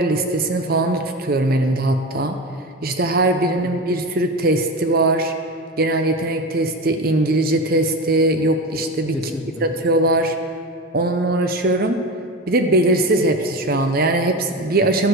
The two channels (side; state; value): both; normal; correlation 0.24